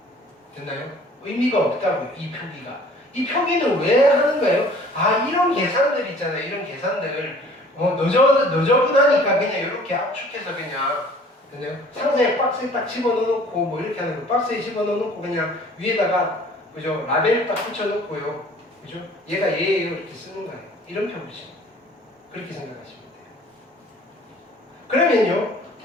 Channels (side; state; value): both; normal; correlation 0.51